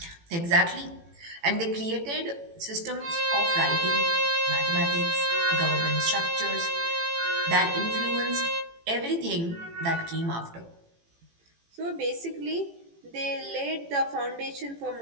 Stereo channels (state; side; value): late; left; 18 ms